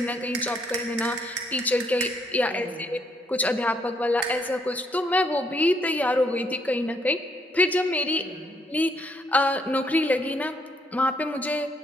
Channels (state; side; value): normal; both; correlation 0.71